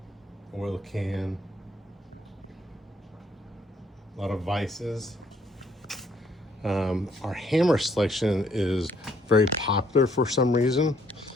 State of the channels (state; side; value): normal; both; correlation 0.67